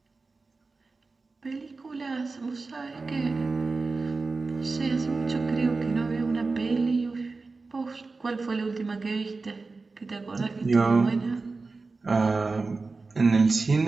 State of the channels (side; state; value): left; quieter; 3.9 dB